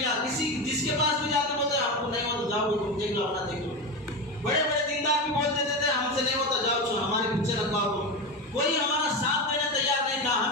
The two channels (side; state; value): both; normal; correlation 0.19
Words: کسی جس کے پاس بھی جاتے بولتے ہم کو نہیں ہوتا جاؤ تم دیکھ لو اپنا دیکھ لو، بڑے بڑے دیندار بھی بول دیتے تھے ہم سے نہیں ہوتا جاؤ چھو ہمارے پیچھے رکھواؤ، کوئی ہمارا ساتھ دینے تیار نہیں تھا،